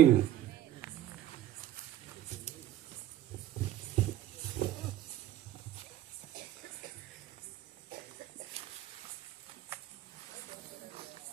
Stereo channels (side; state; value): left; quieter; 12.3 dB